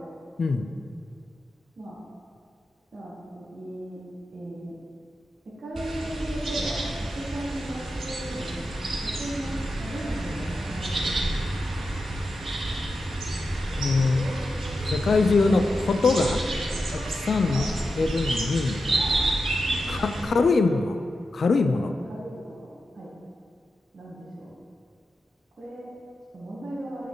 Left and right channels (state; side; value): normal; both; correlation 0.90